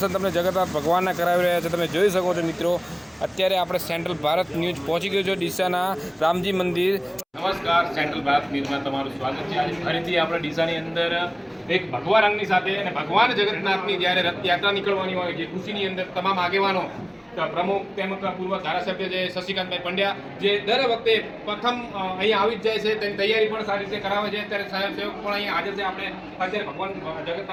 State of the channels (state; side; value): identical; both; correlation 1.00